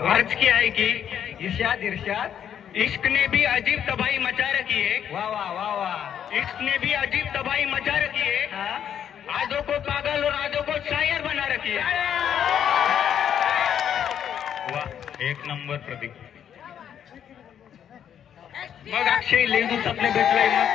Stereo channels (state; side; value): quieter; right; 9.1 dB